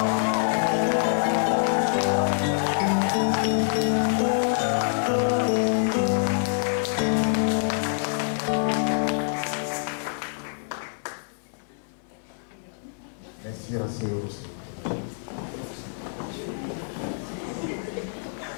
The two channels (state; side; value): silent; right; 58 dB below the other